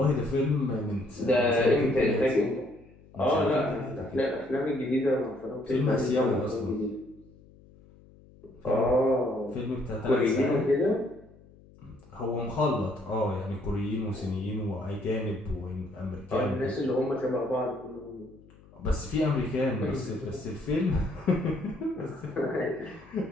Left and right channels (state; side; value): noise; left; hum, 25 dB below the sound